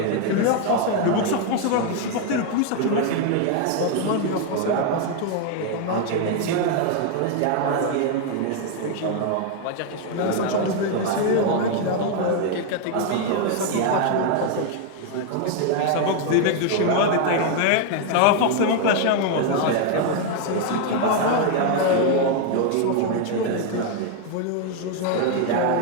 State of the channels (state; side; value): different; both; correlation 0.01